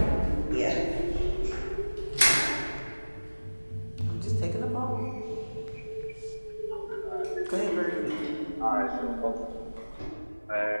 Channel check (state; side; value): inverted; both; correlation -1.00